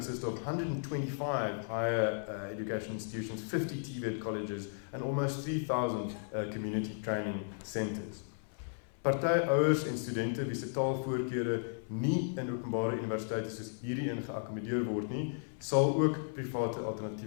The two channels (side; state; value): right; silent; 54 dB below the other